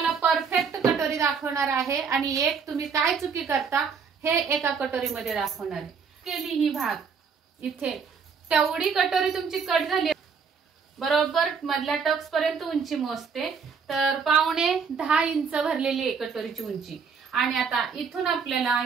परफेक्ट कटोरी दाखवणार आहे आणि एक तुम्ही काय चुकी करता हे एका कटोरीमध्ये दाखवणार आहे। केली ही भाग इथे तेवढी कटोरी तुमची कट झाली बरोबर मधल्या टक्स पर्यंत उंची मोजते तर 5.5 इंच भरलेली आहे कटोरीची उंची। आणि आता इथून आपल्याला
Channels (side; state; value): left; quieter; 5.9 dB